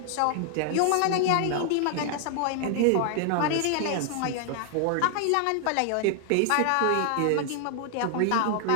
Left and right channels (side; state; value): both; different; correlation 0.00